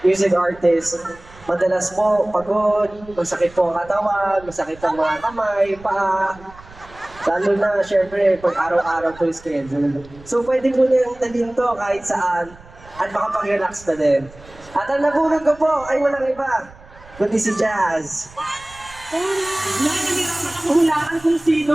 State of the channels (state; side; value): noise; right; rumble, 22 dB below the sound